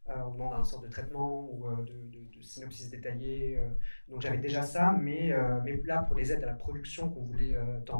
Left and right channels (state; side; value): inverted; both; correlation -1.00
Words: On demande un sorte de traitement ou de synopsis détaillé. Donc j'avais déjà ça, mais là pour les aides à la production qu'on voulait